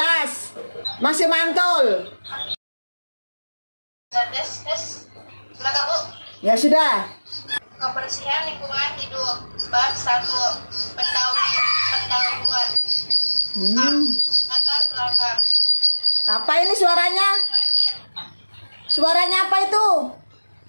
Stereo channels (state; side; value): inverted; both; correlation -1.00